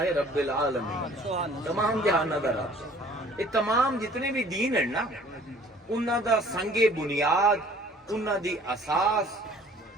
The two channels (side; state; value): both; normal; correlation 0.53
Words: رب العالمین تمام جہاناں دا رب. یہ تمام جتنے بھی دین ہیں نا انہاں دا سنگ بنیاد انہاں دی اساس